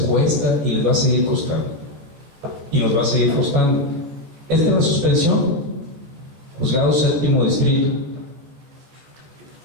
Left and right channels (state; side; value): late; left; 14 ms